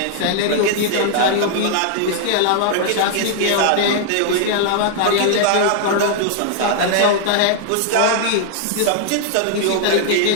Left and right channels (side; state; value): both; different; correlation -0.01